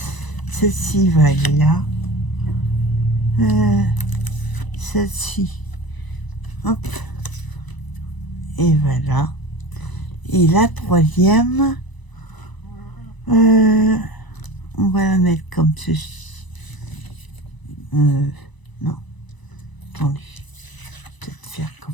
Celle-ci va aller là. Celle-ci. Hop. Et voilà. Et la troisième, on va la mettre comme ceci. Non. Attendez. Peut-être faire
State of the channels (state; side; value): late; right; 1.0 ms